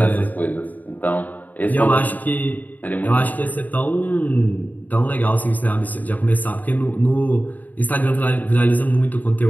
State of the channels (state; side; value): late; right; 0.081 ms